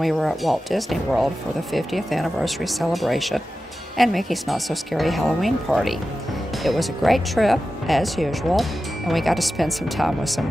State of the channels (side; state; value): both; normal; correlation 0.93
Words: were at Walt Disney World for the 50th anniversary celebration and Mickey's Not So Scary Halloween party. It was a great trip, as usual, and we got to spend some time with